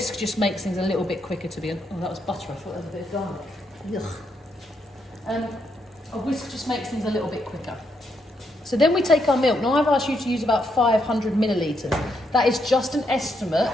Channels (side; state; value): both; normal; correlation 0.78